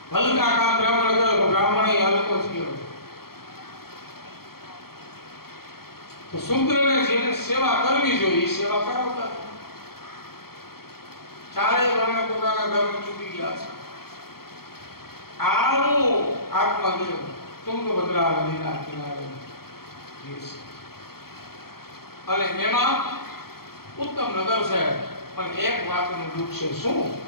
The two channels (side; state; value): right; late; 0.94 ms